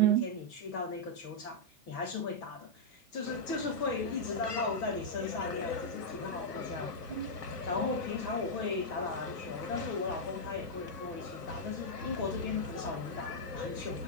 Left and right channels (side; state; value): both; normal; correlation -0.05